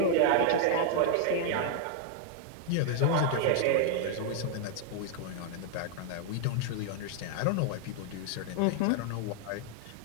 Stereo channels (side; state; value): both; different; correlation 0.00